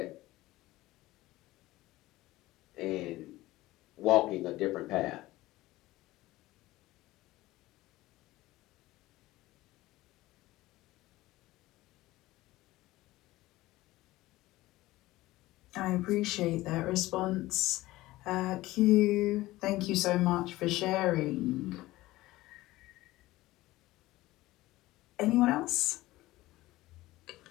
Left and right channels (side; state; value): right; quieter; 17.8 dB